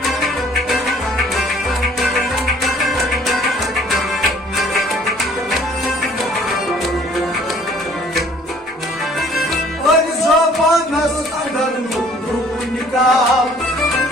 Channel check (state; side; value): normal; both; correlation 0.56